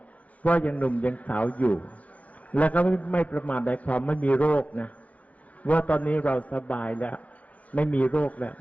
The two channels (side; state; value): right; late; 0.069 ms